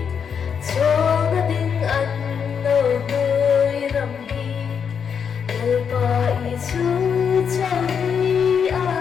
cho nó tiếng anh nó tươi rằm hi lời bài chú cho đi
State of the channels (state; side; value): quieter; right; 7.0 dB